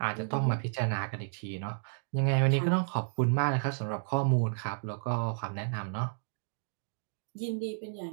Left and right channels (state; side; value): silent; left; digital silence